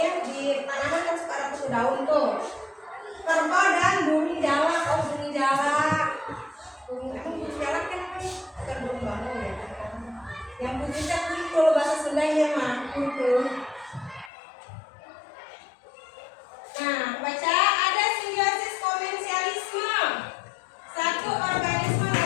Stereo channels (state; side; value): drops out; right; at 14.3 s